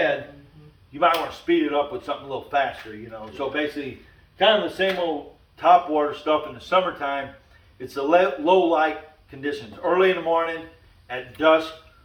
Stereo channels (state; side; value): identical; both; correlation 1.00